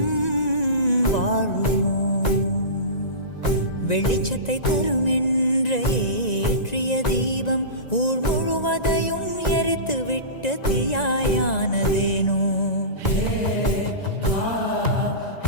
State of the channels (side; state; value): right; late; 1.9 ms